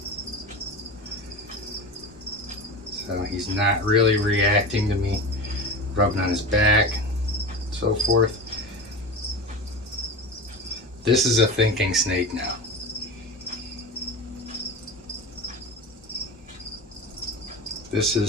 So he's not really reacting to me rubbing on his back, so forth. This is a thinking snake now. This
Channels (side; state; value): both; normal; correlation 0.29